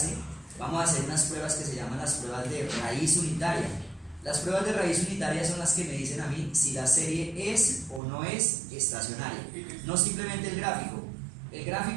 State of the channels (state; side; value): drops out; left; at 8.0 s